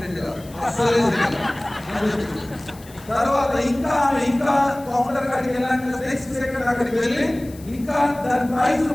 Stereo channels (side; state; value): left; noise; hiss, 22 dB below the sound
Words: కాదు అసలే. తర్వాత ఇంకా కౌంటర్ కాడికి వెళ్ళాక నెక్స్ట్ సెకండ్ అక్కడికి వెళ్ళి ఇంకా దాని ప్రైస్